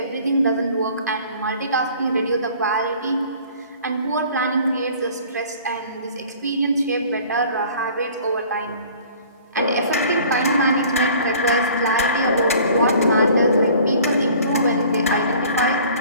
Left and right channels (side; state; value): both; inverted; correlation -0.49